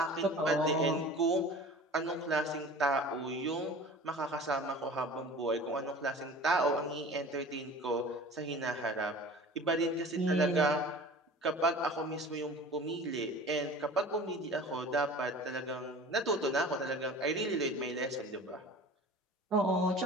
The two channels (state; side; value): normal; both; correlation 0.41